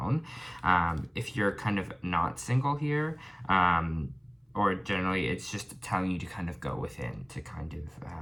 If you're kind of not single here, or generally it's just telling you to kind of go within, to kind of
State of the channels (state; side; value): identical; both; correlation 1.00